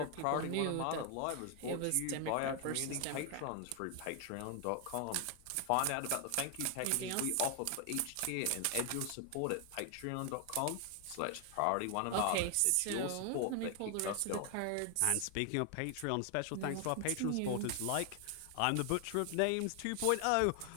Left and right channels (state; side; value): different; both; correlation 0.00